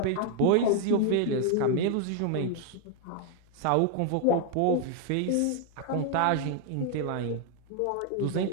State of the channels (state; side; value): different; both; correlation 0.00